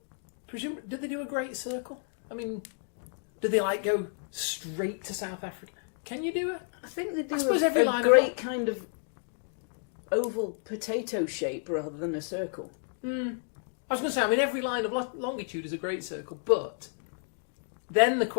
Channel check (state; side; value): silent; right; 57 dB below the other